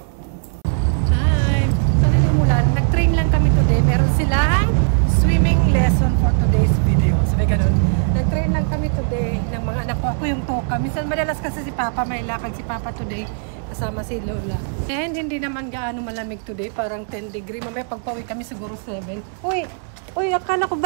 Hi! Sana hindi umulan. Nag-train lang kami today. Meron silang swimming lesson for today's video. Sabi ganun. Nag-train lang kami today ng mga anak ko. Ako yung toka. Minsan madalas kasi si Papa, may lakad si Papa today. Kasama si Lola. And hindi naman gaano malamig today. Parang 10 degree. Mamaya pagpawi kami siguro 7. Uy! Uy! Akala ko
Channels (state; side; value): silent; left; 66 dB below the other